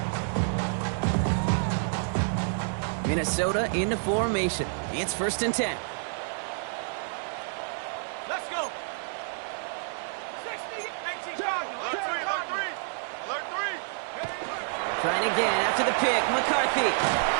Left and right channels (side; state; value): left; silent; digital silence